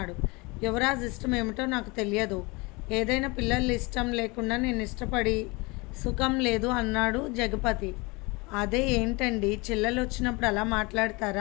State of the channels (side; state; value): right; quieter; 26.0 dB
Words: యువరాజ్ ఇష్టం ఏమిటో నాకు తెలియదు, ఏదైనా పిల్లలు ఇష్టం లేకుండా నేను ఇష్టపడి సుఖం లేదు అన్నాడు జగపతి. అదే ఏంటండి, చెల్లెలు వచ్చినప్పుడు అలా